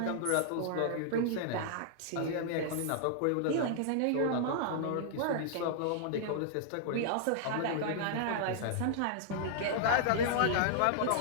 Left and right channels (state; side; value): different; both; correlation -0.01